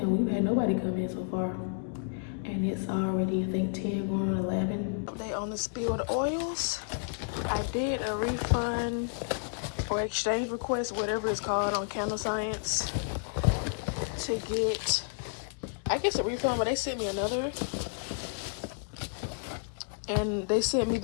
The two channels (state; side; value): silent; right; digital silence